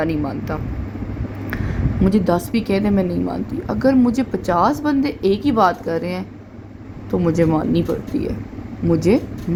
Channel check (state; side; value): identical; both; correlation 1.00